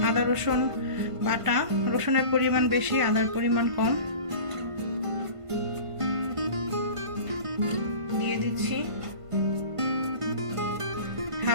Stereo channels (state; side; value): late; left; 1.5 ms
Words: আদা রসুন বাটা। রসুনের পরিমাণ বেশি, আদার পরিমাণ কম। দিয়ে দিচ্ছি